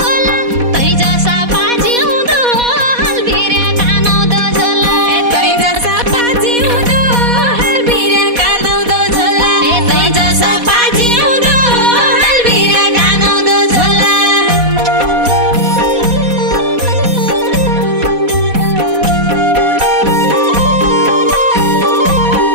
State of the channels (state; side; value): late; left; 4.1 ms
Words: होला तै जसा बाजी हुँदो हल्बिरे कानाउँदो झोला ए तै जसा बाजी हुँदो हल्बिरे कानाउँदो झोला ए तै जसा बाजी हुँदो हल्बिरे कानाउँदो झोला